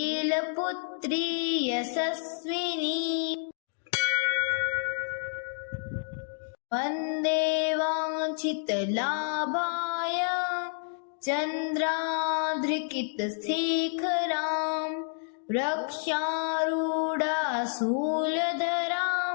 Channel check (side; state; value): right; silent; digital silence